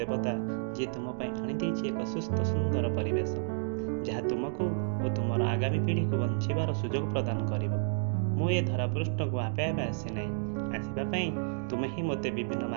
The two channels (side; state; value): left; silent; digital silence